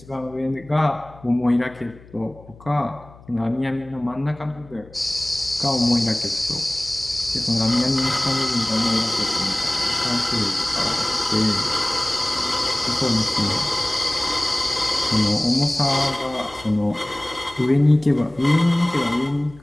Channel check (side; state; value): left; noise; hum, 22 dB below the sound